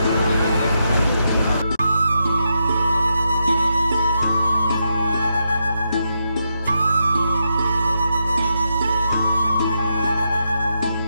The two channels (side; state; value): both; inverted; correlation -0.83